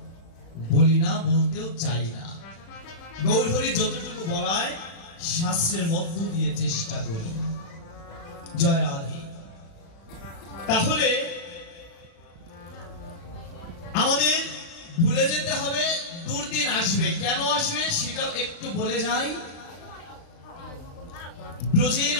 বলি না, বলতেও চাই না। গৌর হরি যতটুকু বলায় শাস্ত্রের মধ্য দিয়ে চেষ্টা করি। জয় রাধে। তাহলে আমাদের ভুলে যেতে হবে, দুর্দিন আসবে। কেন আসবে সেটাও একটু বলে যাই। ব্রজের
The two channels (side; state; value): right; late; 36 ms